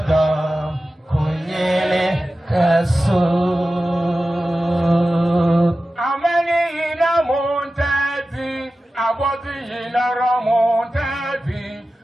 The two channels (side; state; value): both; normal; correlation 0.94